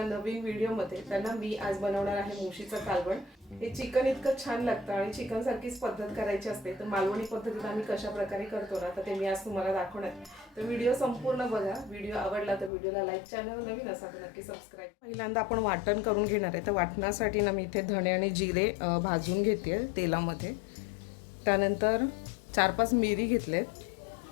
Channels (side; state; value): right; drops out; at 12.7 s